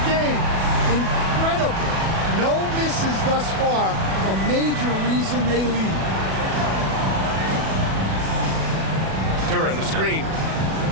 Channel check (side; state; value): left; late; 37 ms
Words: game. Incredible. No misses thus far. A major reason they lead. Duran, the screen.